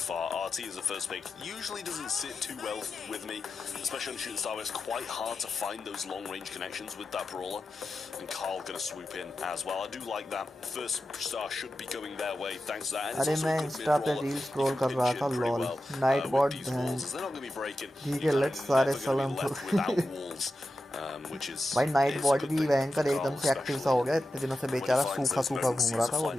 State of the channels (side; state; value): both; normal; correlation 0.91